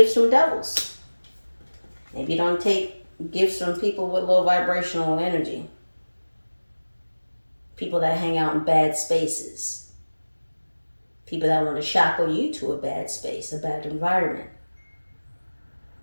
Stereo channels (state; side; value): inverted; both; correlation -1.00